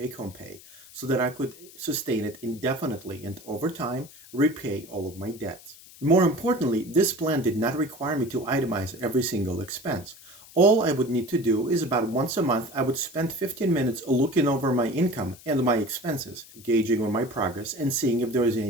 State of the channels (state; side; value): noise; left; hiss, 21 dB below the sound